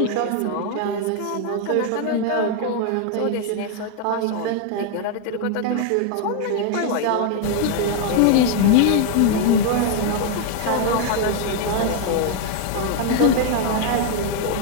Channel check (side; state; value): both; different; correlation 0.00